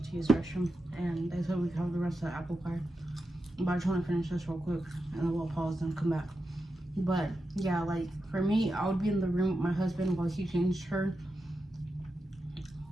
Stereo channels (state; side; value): normal; both; correlation 0.89